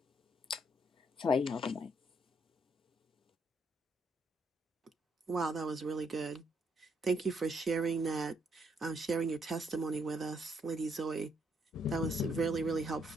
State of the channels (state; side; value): normal; both; correlation 0.72